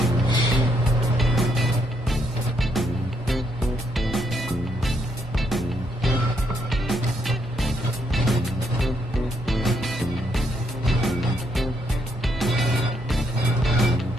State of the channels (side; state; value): both; normal; correlation 0.75